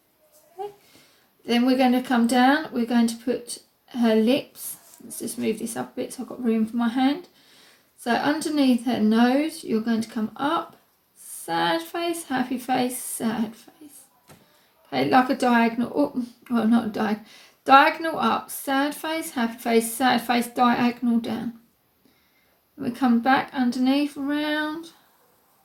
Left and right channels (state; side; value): identical; both; correlation 1.00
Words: Okay. Then we're going to come down. We're going to put her lips. Let's just move this up a bit so I've got room for my hand. So underneath her nose, you're going to come up, sad face, happy face, sad face. Okay, like a diagonal, oh, well not a diagonal, diagonal up, sad face, diagonal down. We come back underneath, round.